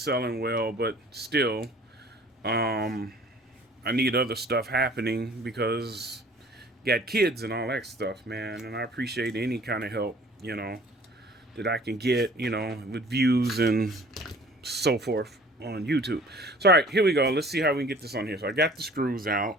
well, but still, I need other stuff happening because got kids and all that stuff, man. And I appreciate any kind of help, that I can get, with views and so forth on YouTube. So, all right, here we go. Let's see how we can get this on here. So I got the screws out.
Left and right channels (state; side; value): normal; both; correlation 0.51